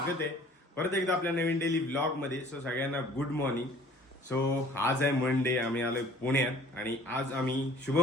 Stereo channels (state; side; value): normal; both; correlation 0.52